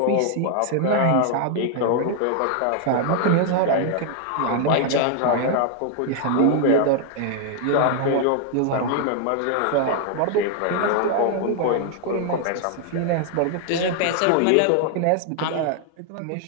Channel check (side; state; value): both; different; correlation 0.00